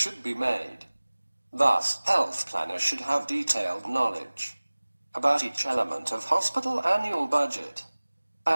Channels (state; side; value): inverted; both; correlation -1.00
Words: be made. Thus, health planners should have detailed knowledge about each element of hospital annual budget,